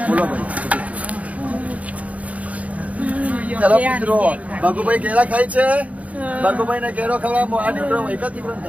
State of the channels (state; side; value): late; left; 0.069 ms